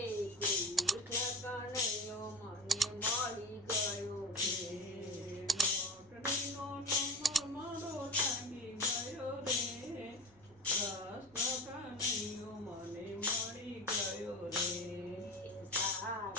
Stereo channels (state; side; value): noise; left; rumble, 29 dB below the sound